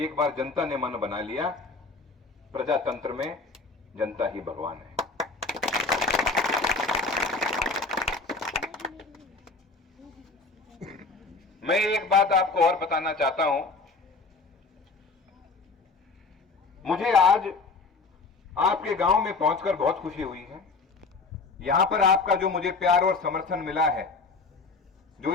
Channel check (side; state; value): right; quieter; 4.0 dB